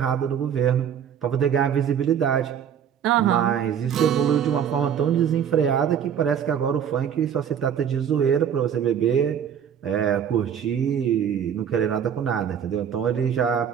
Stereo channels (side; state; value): left; quieter; 8.5 dB